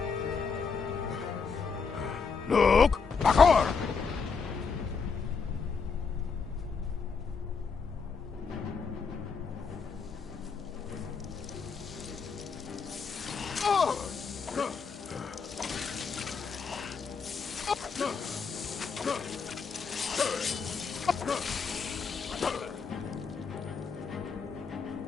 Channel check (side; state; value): right; quieter; 5.4 dB